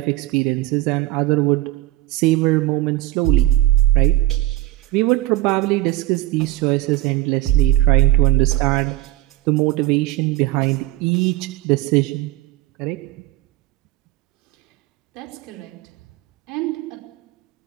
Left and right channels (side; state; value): left; quieter; 15.8 dB